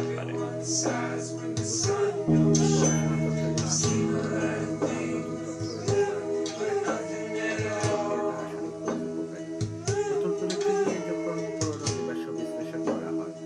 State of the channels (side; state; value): both; identical; correlation 1.00